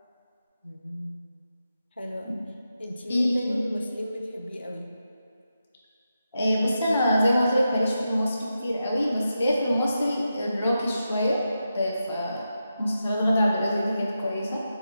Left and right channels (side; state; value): both; inverted; correlation -0.88